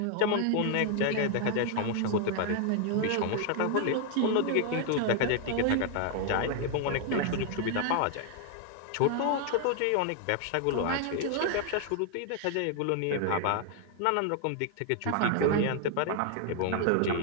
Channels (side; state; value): both; different; correlation 0.00